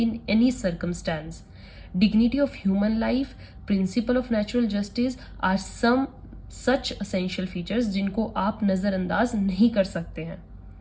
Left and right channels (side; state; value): both; identical; correlation 1.00